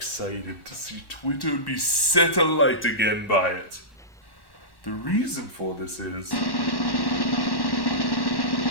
to see Twitter be set alight again by it. The reason for this is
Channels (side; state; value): right; late; 1.1 ms